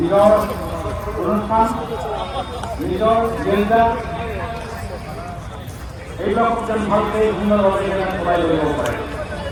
অনুষ্ঠান নিজৰ জেণ্ডা এইবিলাক যেন ভালকৈ সুন্দৰভাৱে চলাই লৈ যাব পাৰে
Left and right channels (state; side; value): identical; both; correlation 1.00